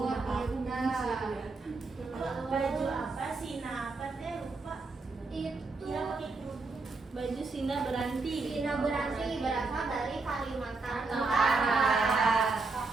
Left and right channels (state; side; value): quieter; left; 3.8 dB